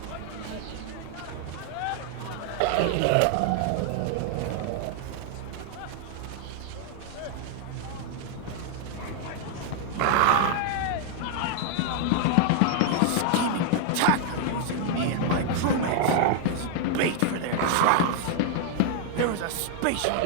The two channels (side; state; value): both; different; correlation 0.00